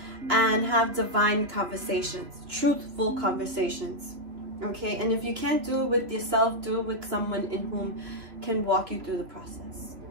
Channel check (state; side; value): late; left; 3.1 ms